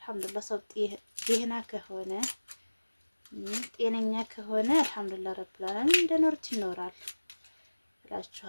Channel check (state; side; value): inverted; both; correlation -1.00